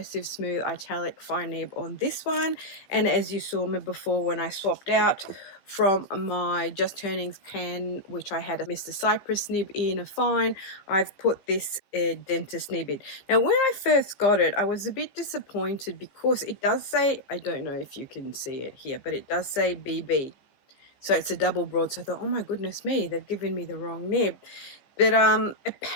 smooth italic fine nib on this one. And as you saw me before when I swapped out from my Just Turnings pen, which I had a Mr. Cypress nib in a fine, I've put this dentist nib in. Now when I first got it, I was a bit disappointed because it does say, I don't know if you can see it here, but it does say BB. So it's a double broad. So I thought, oh my goodness me, they've given me the wrong nib. But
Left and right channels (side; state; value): right; late; 15 ms